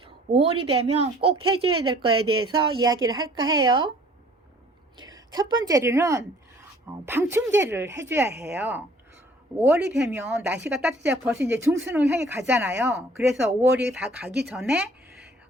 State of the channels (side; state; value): both; normal; correlation 0.55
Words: 5월이 되면 꼭 해줘야 될 거에 대해서 이야기를 할까 해요. 첫 번째로는 방충제를 해줘야 해요. 5월이 되면 날씨가 따뜻해져 벌써 이제 중순을 향해 가잖아요. 그래서 5월이 다 가기 전에